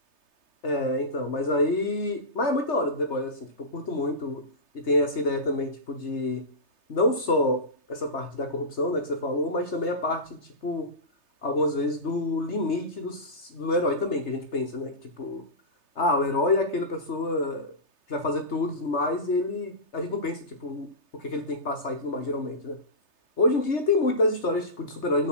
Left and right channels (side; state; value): right; late; 3.3 ms